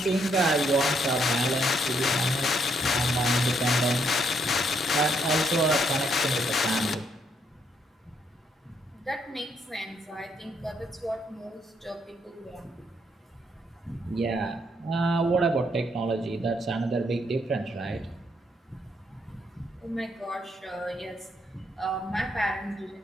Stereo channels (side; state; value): both; normal; correlation 0.74